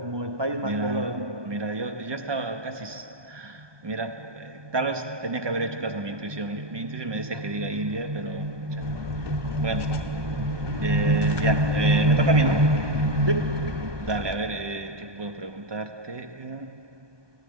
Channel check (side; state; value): left; late; 1.2 ms